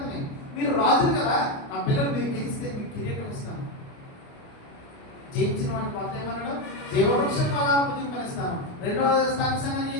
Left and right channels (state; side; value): late; right; 29 ms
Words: మీరు రాజులు కదా. నా పిల్లలు మీరు గెలిస్తే మీకు కిరీటం ఇస్తాను. జయించిన వాడిని కొత్త ఏమన్నాడు? జీవవృక్షం ఫలాలు భుజింపనిస్తాను. రెండవ స్థానిక సంఘాన్ని ఏం